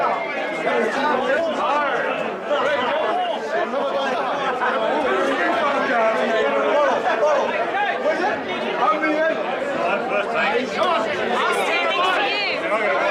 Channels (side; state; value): both; identical; correlation 1.00